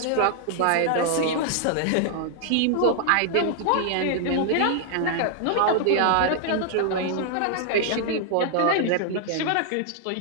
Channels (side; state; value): both; different; correlation 0.00